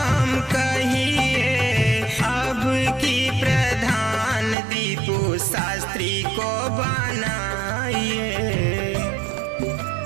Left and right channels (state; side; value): drops out; left; at 4.5 s